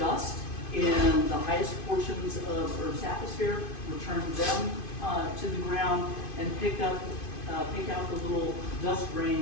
in the highest portions of Earth's atmosphere, return them to the ground, and pick out the little dust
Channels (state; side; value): late; right; 2.5 ms